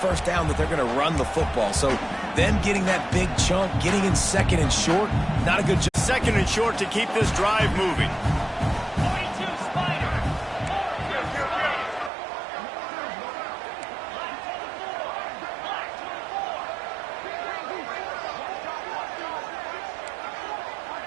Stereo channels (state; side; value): drops out; left; at 12.1 s